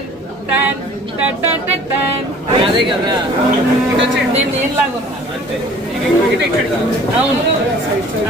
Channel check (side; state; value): both; normal; correlation 0.50